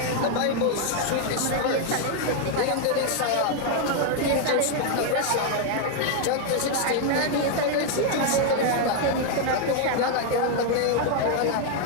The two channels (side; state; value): both; different; correlation 0.00